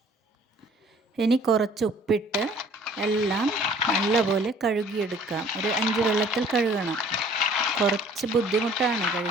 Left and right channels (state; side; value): normal; both; correlation 0.54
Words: ഇനി കുറച്ച് ഉപ്പിട്ട് എല്ലാം നല്ലപോലെ കഴുകിയെടുക്കാം. ഒരു 5 വെള്ളത്തിൽ കഴുകണം. കുറച്ച് ബുദ്ധിമുട്ടാണ്